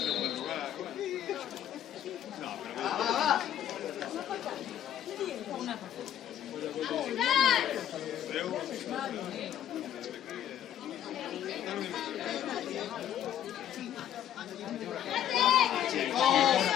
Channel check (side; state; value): right; quieter; 10.8 dB